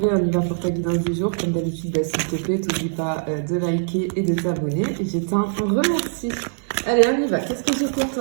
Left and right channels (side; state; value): left; silent; 64 dB below the other